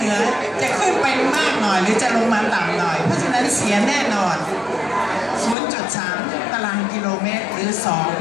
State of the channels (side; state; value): right; drops out; at 5.6 s